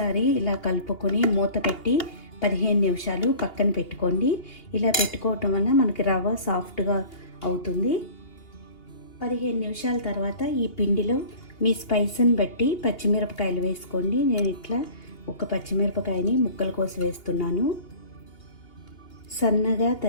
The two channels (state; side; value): late; right; 2.8 ms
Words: ఇలా కలుపుకొని మూత పెట్టి 15 నిమిషాలు పక్కన పెట్టుకోండి. ఇలా పెట్టుకోవటం వల్ల మనకి రవ్వ సాఫ్ట్గా అవుతుంది. 15 నిమిషాల తర్వాత ఈ పిండిలో మీ స్పైస్ని బట్టి పచ్చిమిరపకాయలు వేసుకోండి. నేను ఇట్లా 1 పచ్చిమిరపకాయని ముక్కలు కోసి వేస్తున్నాను. సన్నగా